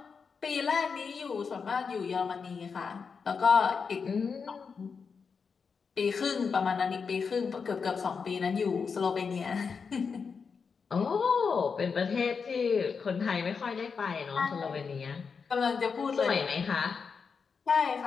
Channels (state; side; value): quieter; right; 5.6 dB